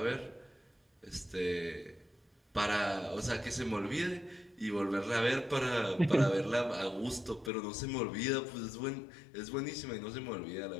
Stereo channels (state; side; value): drops out; right; at 7.5 s